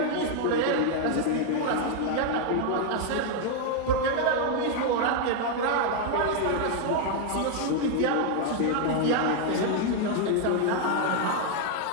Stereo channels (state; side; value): different; both; correlation 0.00